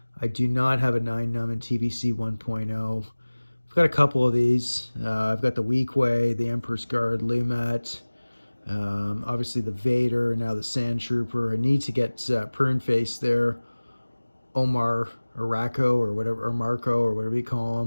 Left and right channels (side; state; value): both; inverted; correlation -1.00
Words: I do not have a 9-num in TVC 1.0. I've got a couple of these. I've got the Weequay, the Emperor's Guard, Lumet, obviously the Vader, and now the SANDTROOPER. I need to get Prune Face there, Omar Araco or whatever, or Marco or whatever you call